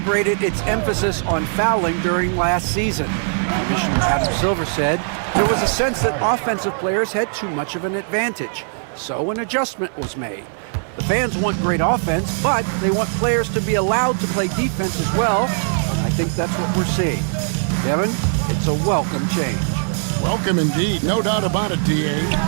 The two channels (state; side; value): silent; left; 56 dB below the other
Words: its emphasis on fouling during last season. Commissioner Adam Silver said there was a sense that offensive players had too much of an advantage, so an adjustment was made. The fans want great offense, but they want players to be allowed to play defense as well. I think that's what we're seeing. Kevin, it's a welcome change. Welcome indeed, no doubt about it, D.A.